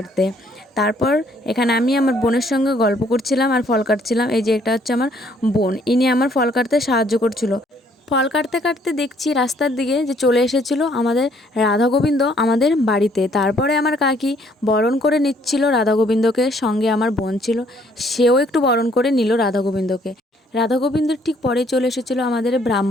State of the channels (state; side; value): normal; both; correlation 0.65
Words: তারপর এখানে আমি আমার বোনের সঙ্গে গল্প করছিলাম আর ফল কাটছিলাম। এই যে এটা হচ্ছে আমার বোন, ইনি আমার ফল কাটতে সাহায্য করছিল। ফল কাটতে কাটতে দেখছি রাস্তার দিকে যে চলে এসেছিল আমাদের রাধা গোবিন্দ আমাদের বাড়িতে। তারপরে আমার কাকি বরণ করে নিচ্ছিল রাধা গোবিন্দকে, সঙ্গে আমার বোন ছিল, সেও একটু বরণ করে নিল রাধা গোবিন্দকে। রাধা গোবিন্দর ঠিক পরে চলে এসেছিলো আমাদের